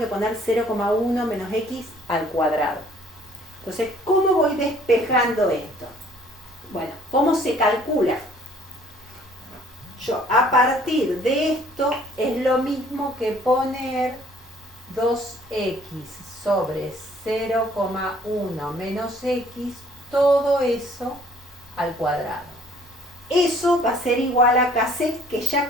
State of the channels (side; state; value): both; normal; correlation 0.58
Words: poner 0,1 menos x al cuadrado. Entonces, ¿cómo voy despejando esto? Bueno, ¿cómo se calcula? Yo, a partir de esto, es lo mismo que poner 2x sobre 0,1 menos x, todo eso al cuadrado. Eso va a ser igual a Kc, que ya